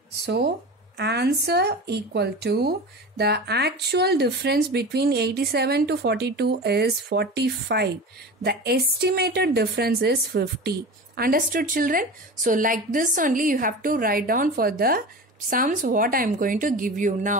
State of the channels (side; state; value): both; normal; correlation 0.31